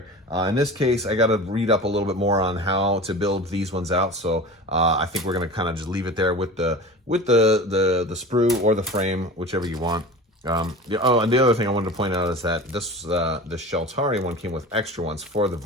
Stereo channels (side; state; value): both; normal; correlation 0.34